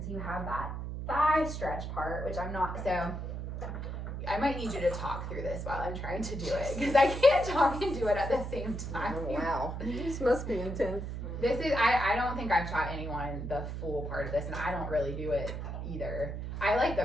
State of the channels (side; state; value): right; noise; hum, 5 dB below the sound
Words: so you have that thigh stretch part, which I'm not, so I might need you to talk through this while I'm trying to do it, because I can't talk and do it at the same time. Oh, wow. This must be intense. This is, I don't think I've taught anyone the full part of this, and I don't really do it either. I like the